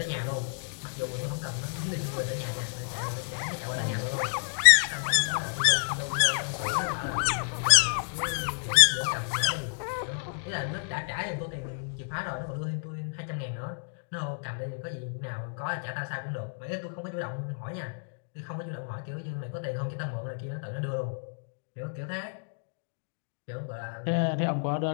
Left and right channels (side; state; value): right; silent; digital silence